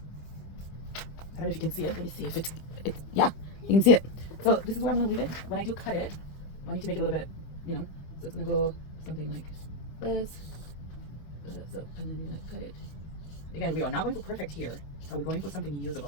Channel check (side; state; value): right; late; 25 ms